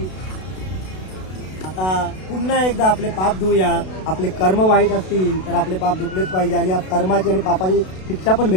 आता पुन्हा एकदा आपले पाप धुऊया। आपले कर्म वाईट असतील तर आपले पाप धुतलेच पाहिजे आणि या कर्माची आणि पापाची शिक्षा पण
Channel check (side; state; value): right; late; 32 ms